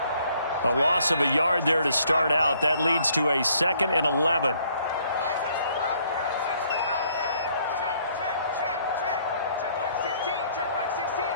A loss of a yard there to start out. That leads to a 2nd and 11.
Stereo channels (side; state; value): both; inverted; correlation -0.65